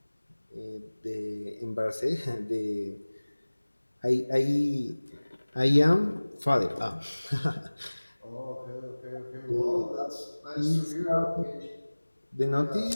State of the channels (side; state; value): both; inverted; correlation -1.00